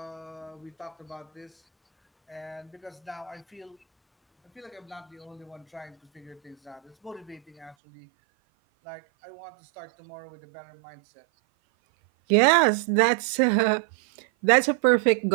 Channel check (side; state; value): left; drops out; at 7.8 s